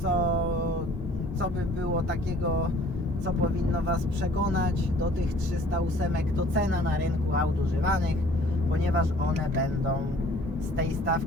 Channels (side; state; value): both; normal; correlation 0.53